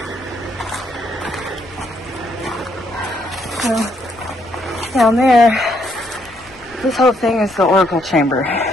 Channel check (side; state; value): left; noise; rumble, 26 dB below the sound